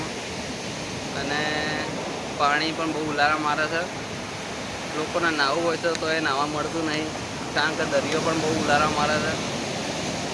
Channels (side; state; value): both; identical; correlation 1.00